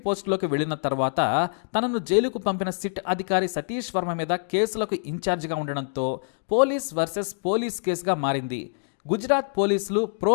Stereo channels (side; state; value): right; silent; digital silence